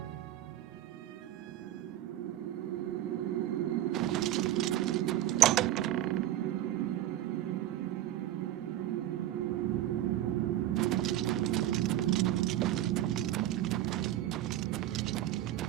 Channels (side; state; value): left; quieter; 13.2 dB